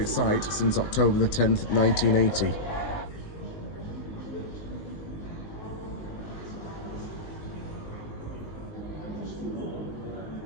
site since October the 10th, 1980.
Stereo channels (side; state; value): right; late; 19 ms